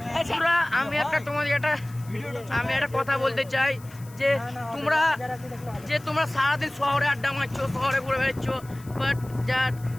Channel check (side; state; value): left; noise; hiss, 23 dB below the sound